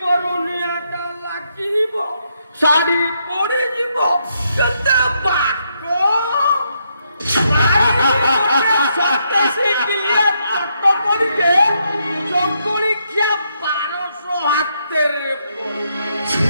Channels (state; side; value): inverted; both; correlation -0.77